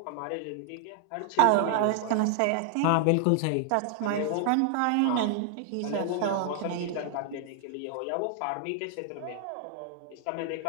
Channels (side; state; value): both; different; correlation -0.01